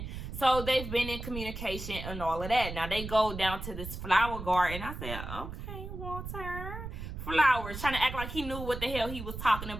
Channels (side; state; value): right; noise; rumble, 8 dB below the sound